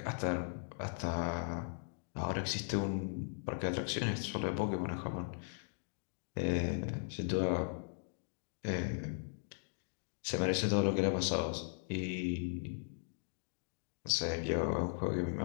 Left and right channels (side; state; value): right; silent; digital silence